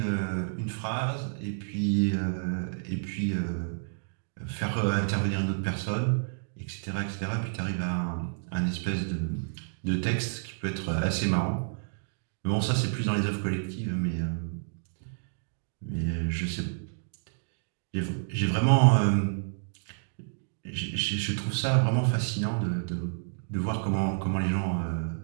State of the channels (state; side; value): silent; left; digital silence